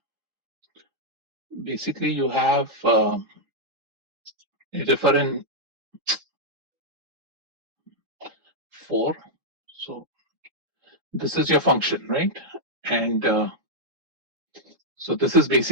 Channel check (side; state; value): left; late; 3.8 ms